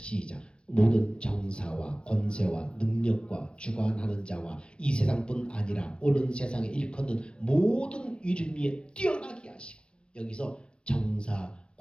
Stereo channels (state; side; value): late; right; 0.055 ms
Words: 모든 정사와 권세와 능력과 주관하는 자와 이 세상뿐 아니라 오는 세상에 일컫는 모든 이름 위에 뛰어나게 하시고, 여기서 정사,